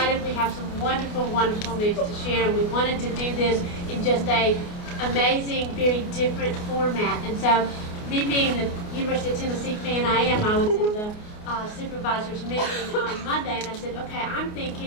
We have some wonderful, wonderful news to share. We wanted to do this in just a amazing, very different format. And so, me being the University of Tennessee fan I was in the supervisors meeting on Monday, and I said, okay, I'm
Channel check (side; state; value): right; late; 28 ms